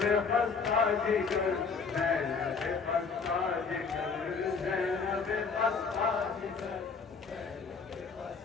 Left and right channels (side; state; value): right; quieter; 5.2 dB